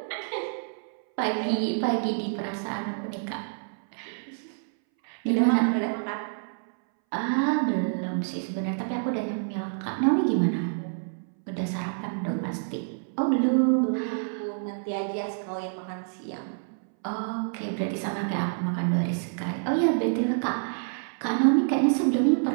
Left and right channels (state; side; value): silent; left; 60 dB below the other